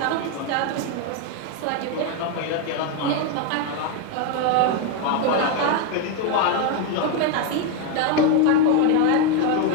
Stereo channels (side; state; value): both; different; correlation 0.01